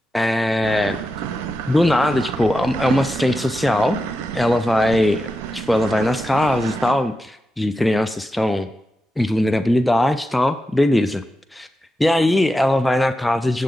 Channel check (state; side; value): normal; both; correlation 0.89